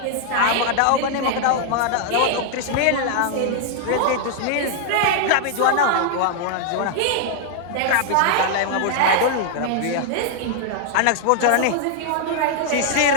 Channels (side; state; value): both; different; correlation 0.00